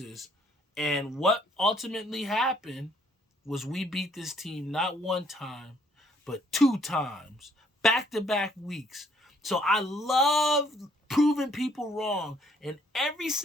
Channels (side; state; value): both; normal; correlation 0.65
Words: And what ultimately happened was we beat this team not one time, but 2 times, back-to-back weeks. So I love proving people wrong. And every